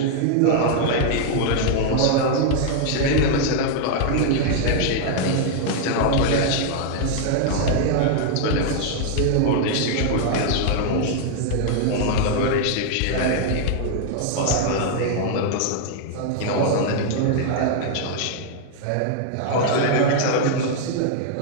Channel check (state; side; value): different; both; correlation 0.00